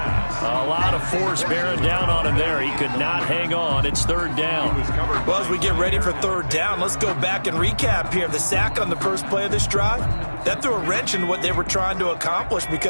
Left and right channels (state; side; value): inverted; both; correlation -1.00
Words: A lot of force bearing down on him there. He could not hang on. It's 3rd down. Well, as we get ready for 3rd down, let's go back and recap here. The sack on the first play of this drive, that threw a wrench in what they were trying to accomplish